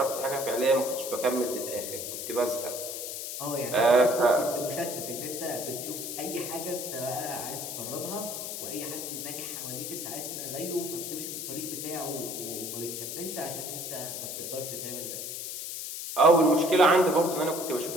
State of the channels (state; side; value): noise; left; hiss, 6 dB below the sound